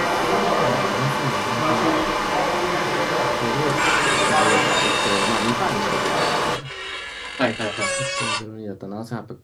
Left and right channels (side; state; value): both; identical; correlation 1.00